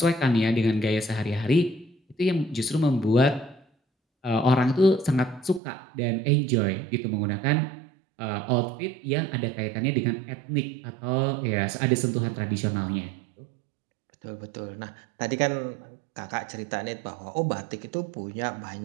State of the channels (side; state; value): left; drops out; at 5.6 s